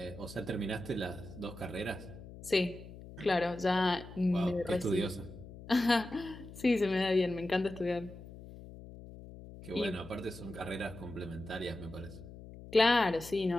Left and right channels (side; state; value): left; noise; hum, 15 dB below the sound